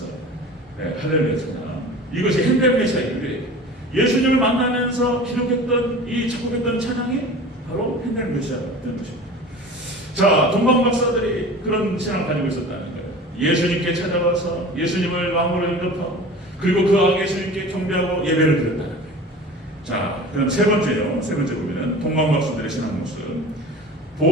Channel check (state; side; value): normal; both; correlation 0.38